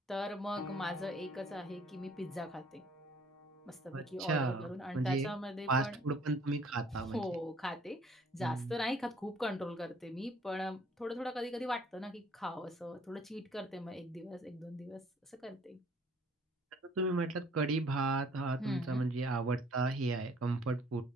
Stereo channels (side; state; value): both; normal; correlation 0.58